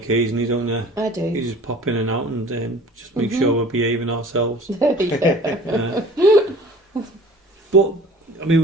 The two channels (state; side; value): normal; both; correlation 0.46